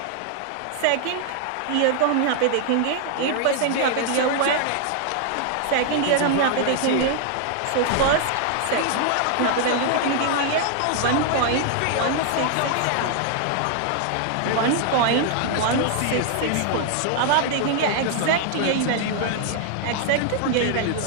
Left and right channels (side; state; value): both; different; correlation 0.00